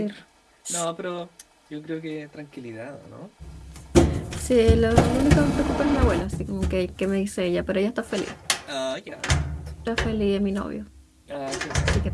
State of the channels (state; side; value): identical; both; correlation 1.00